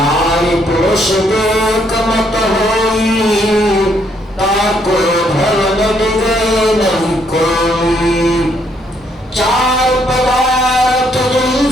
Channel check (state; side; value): normal; both; correlation 0.71